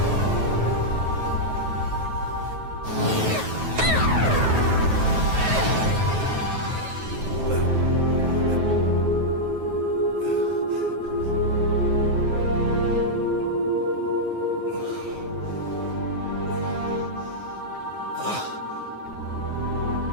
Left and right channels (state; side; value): late; left; 9.3 ms